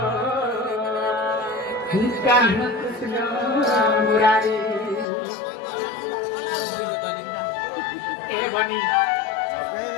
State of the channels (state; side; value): drops out; right; at 5.1 s